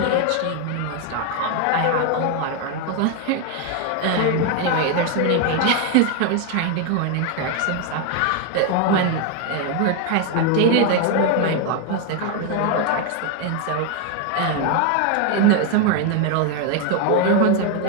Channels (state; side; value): different; both; correlation 0.01